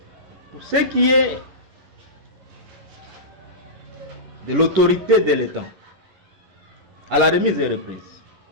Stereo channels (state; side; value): late; left; 11 ms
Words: Pour ce qui est de l'autorité de l'État, à la remise et reprise,